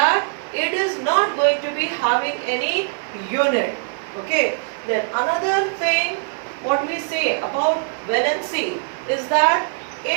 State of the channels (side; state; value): left; silent; 56 dB below the other